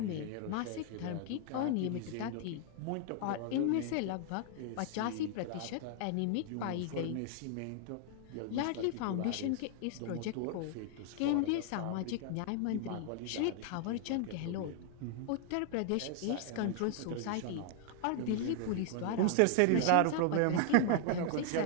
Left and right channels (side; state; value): both; different; correlation 0.00